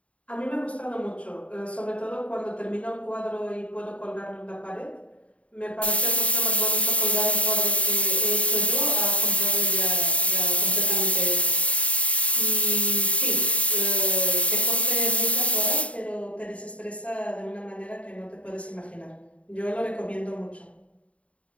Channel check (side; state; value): right; late; 0.064 ms